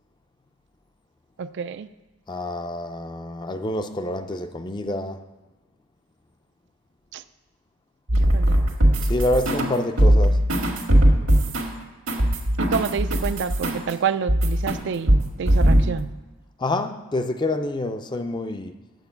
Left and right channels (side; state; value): both; normal; correlation 0.80